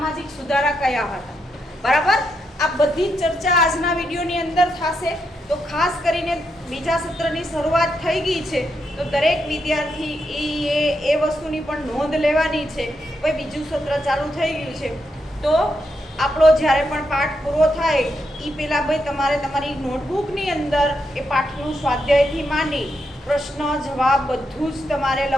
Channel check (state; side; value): normal; both; correlation 0.82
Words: સુધારા કયા હતા. બરાબર, આ બધી ચર્ચા આજના વિડીયોની અંદર થશે. તો ખાસ કરીને બીજા સત્રની શરૂઆત થઈ ગઈ છે, તો દરેક વિદ્યાર્થી એ વસ્તુની પણ નોંધ લેવાની છે. ભાઈ બીજું સત્ર ચાલુ થઈ ગયું છે, તો આપણો જ્યારે પણ પાઠ પૂરો થાય એ પહેલાં ભાઈ તમારે તમારી નોટબુકની અંદર એ પાઠનું સ્વાધ્યાયથી માંડી પ્રશ્ન જવાબ બધું જ તમારે